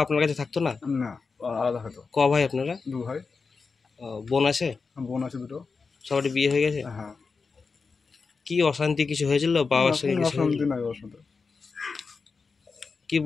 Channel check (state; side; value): quieter; right; 4.7 dB